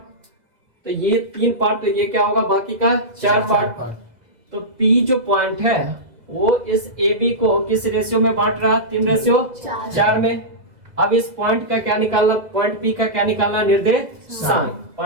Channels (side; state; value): left; late; 2.0 ms